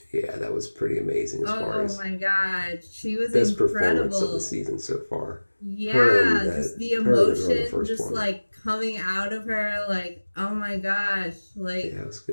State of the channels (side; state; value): both; inverted; correlation -1.00